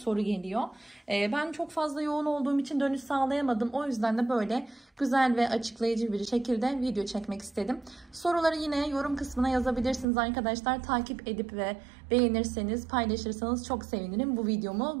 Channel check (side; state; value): left; drops out; at 10.1 s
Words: geliyor. Ben çok fazla yoğun olduğum için dönüş sağlayamadım. O yüzden de böyle güzel ve açıklayıcı bir şekilde video çekmek istedim. Soruları yine yorum kısmına yazabilirsiniz arkadaşlar. Takip edip ve beğenirseniz, paylaşırsanız çok sevinirim. Bu